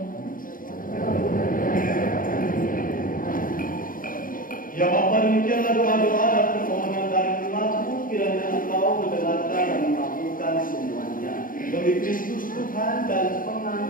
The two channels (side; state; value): right; late; 0.40 ms